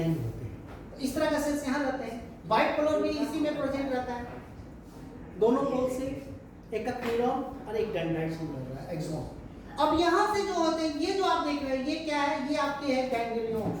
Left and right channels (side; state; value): both; identical; correlation 1.00